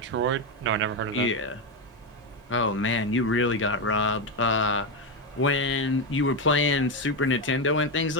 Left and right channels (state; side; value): normal; both; correlation 0.09